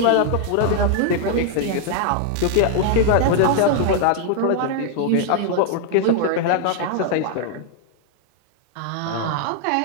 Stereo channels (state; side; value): different; both; correlation 0.00